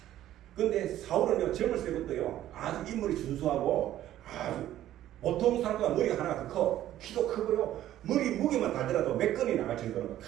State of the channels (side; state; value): left; quieter; 12.9 dB